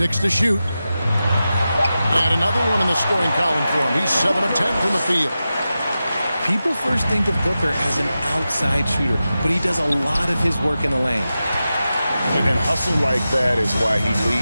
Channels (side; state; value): both; inverted; correlation -0.92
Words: to shoot. And another one in the scoring column for him. He's 7 of 10 from the field. People first think of Booker as an outside shooter, but he does a lot of his work in the lane. And hustle like that is why he